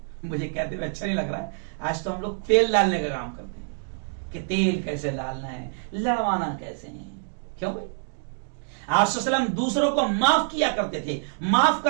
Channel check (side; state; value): left; silent; digital silence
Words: مجھے کہتے ہوئے اچھا نہیں لگ رہا ہے، آج تو ہم لوگ تیل ڈالنے کا کام کرتے ہیں کہ تیل کیسے ڈالنا ہے، لڑوانا کیسے ہے. کیوں بھائی؟ آپ صلی اللہ علیہ وسلم دوسروں کو معاف کیا کرتے تھے. معاف